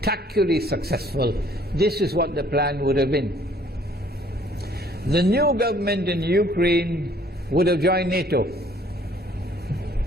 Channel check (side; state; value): both; normal; correlation 0.59